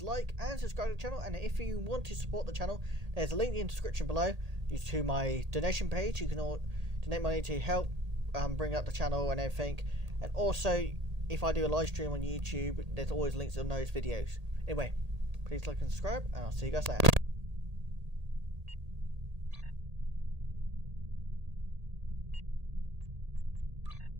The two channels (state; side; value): late; left; 1.8 ms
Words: like and subscribe to the channel, and if you want to support the channel, there's a link in the description below to my donation page. You can all donate money to help bring up the channel and everything, and also if I do a live stream on YouTube, there's always links on those videos. Anyway, please like and subscribe, and I'll see you guys later.